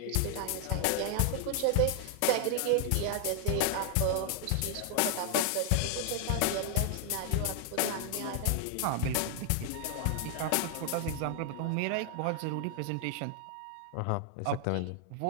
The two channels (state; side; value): different; both; correlation 0.00